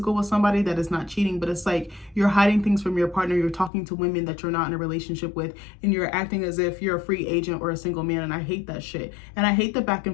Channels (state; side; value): drops out; right; at 3.7 s